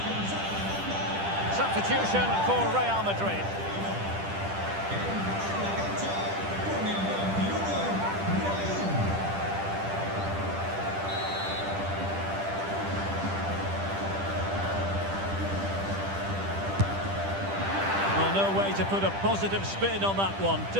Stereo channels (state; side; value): late; left; 10 ms